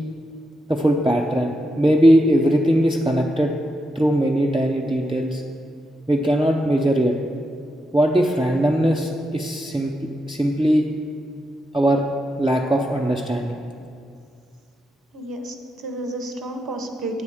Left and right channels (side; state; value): both; normal; correlation 0.85